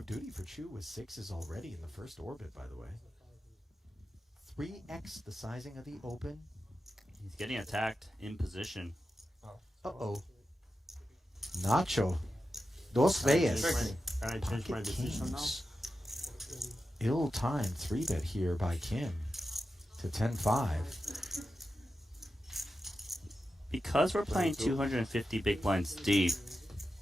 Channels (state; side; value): normal; both; correlation 0.91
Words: duty for Chu with 6s already in the first orbit, by the way. 3x the sizing of the Open. He's getting attacked in position. Uh-oh. Nacho. Dos veces. Can I change my decision now? Ill-timed 3-bet here by Kim to 10-5. Because we're playing 250 big blinds deep,